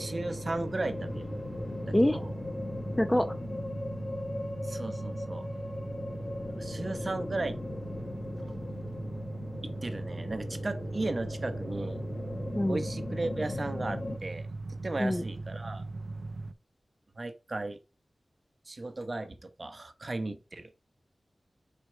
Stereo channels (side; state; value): both; normal; correlation 0.97